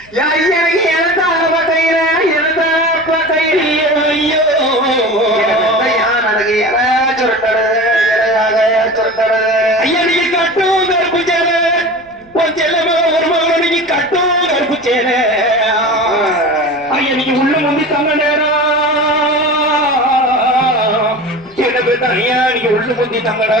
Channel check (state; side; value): noise; left; rumble, 28 dB below the sound